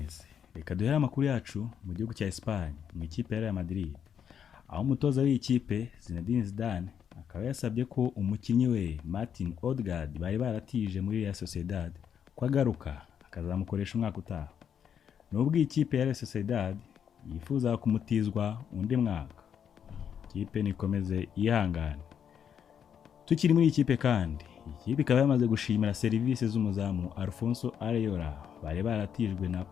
Reka duhere amakuru yacu mu gihugu cya Espagne mu ikipe ya Real Madrid. Aho umutoza w'iyi kipe Zinedine Zidane akaba yasabye ko umukinnyi we Martin Odegaard bari baratije muri Real Sociedad ko agaruka akazamukoresha umwaka utaha. Nubwo iyi kipe ya Real Sociedad yifuza kumutizwa undi mwaka, ikipe nikomeze yihangane. Tukiri muri ikipe kandi, ikipe ikaba yamaze gushimira serivisi z'umuzamu Alfonso Areola bari baratijwe na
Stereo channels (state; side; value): quieter; right; 8.2 dB